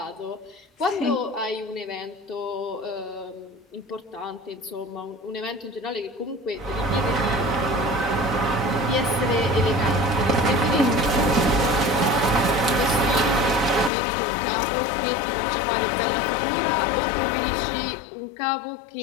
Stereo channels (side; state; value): right; drops out; at 13.9 s